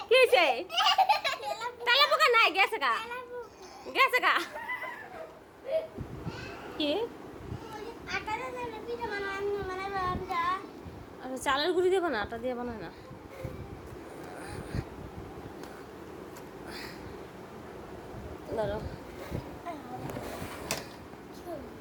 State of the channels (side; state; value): both; identical; correlation 1.00